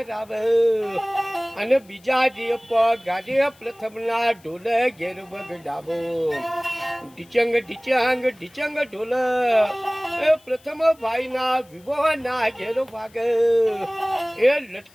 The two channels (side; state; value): left; noise; hiss, 29 dB below the sound